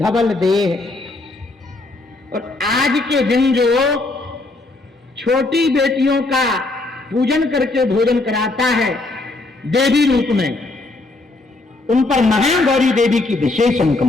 देह। और आज के दिन जो छोटी बेटियों का पूजन करके भोजन कराता है देवी रूप में, उन पर महागौरी देवी की विशेष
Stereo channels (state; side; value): quieter; right; 3.1 dB